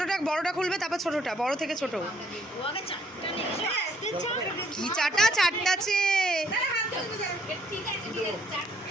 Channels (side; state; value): both; normal; correlation 0.66